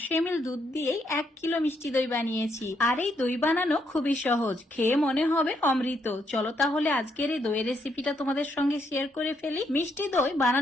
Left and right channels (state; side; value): normal; both; correlation 0.75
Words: ml দুধ দিয়েই 1 কিলো মিষ্টি দই বানিয়েছি। আর এই দই বানানো খুবই সহজ, খেয়ে মনে হবে অমৃত। চলো তাহলে আজকের এই দইয়ের রেসিপিটা তোমাদের সঙ্গে শেয়ার করে ফেলি। মিষ্টি দই